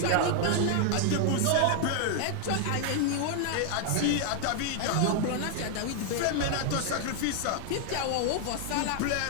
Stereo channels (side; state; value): both; different; correlation 0.00